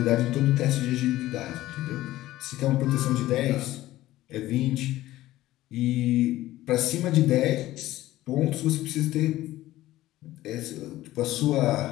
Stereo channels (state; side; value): quieter; right; 15.8 dB